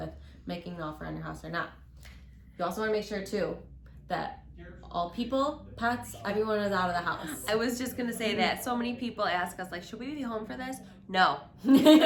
making an offer on your house or not. You also want to make sure too that all people, pets, everyone is out of the house. I was just gonna say that. So many people ask us, like, should we be home for this? No.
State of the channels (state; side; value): identical; both; correlation 1.00